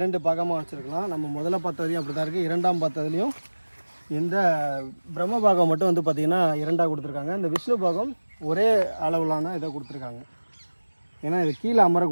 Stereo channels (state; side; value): inverted; both; correlation -1.00